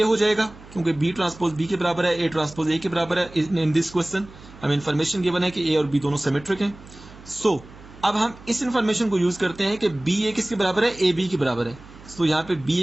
हो जाएगा, क्योंकि B ट्रांसपोज B के बराबर है, A ट्रांसपोज A के बराबर है। इन दिस क्वेश्चन हमें इन्फॉर्मेशन गिवन है कि A और B दोनों सिमेट्रिक हैं। सो अब हम इस इन्फॉर्मेशन को यूज करते हैं कि BA किसके बराबर है, AB के बराबर है। सो यहाँ पे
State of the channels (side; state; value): right; noise; hum, 20 dB below the sound